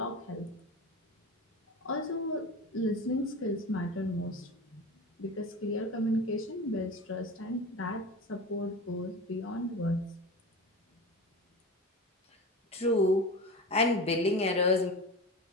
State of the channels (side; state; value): both; normal; correlation 0.29